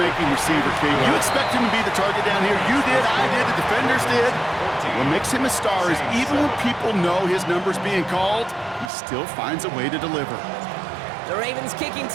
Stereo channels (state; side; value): drops out; left; at 8.9 s